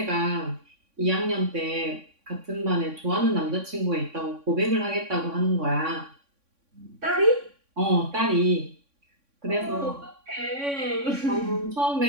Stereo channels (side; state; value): left; late; 3.6 ms